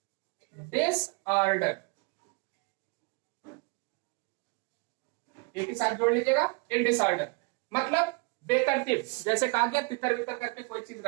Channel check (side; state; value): left; quieter; 31.4 dB